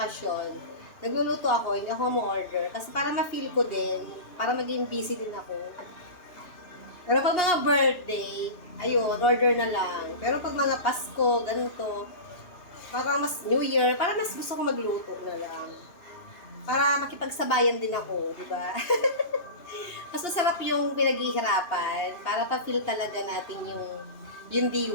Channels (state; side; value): late; right; 2.9 ms